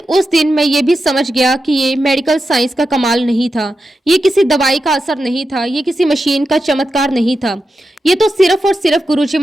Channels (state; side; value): normal; both; correlation 0.89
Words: उस दिन मैं ये भी समझ गया कि ये मेडिकल साइंस का कमाल नहीं था, ये किसी दवाई का असर नहीं था, ये किसी मशीन का चमत्कार नहीं था। ये तो सिर्फ और सिर्फ गुरुजी